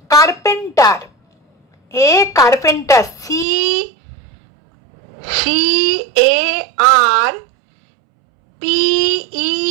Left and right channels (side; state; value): left; drops out; at 3.5 s